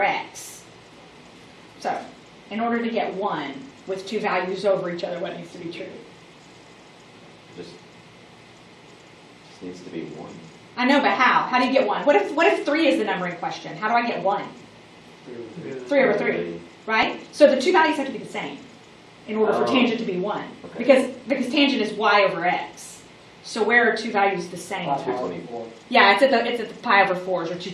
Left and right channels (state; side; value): identical; both; correlation 1.00